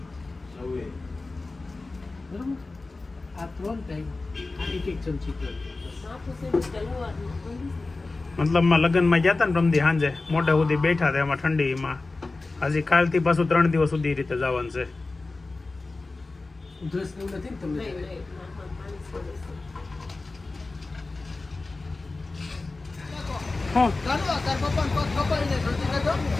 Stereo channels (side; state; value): right; quieter; 3.5 dB